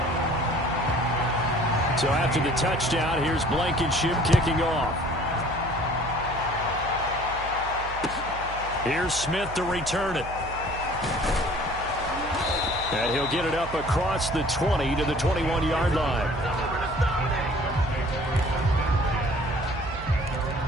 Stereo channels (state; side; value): noise; right; hum, 12 dB below the sound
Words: So after the touchdown, here's Blankenship kicking off. Here's Smith to return it. And he'll get it up across the 20 to the 21-yard line.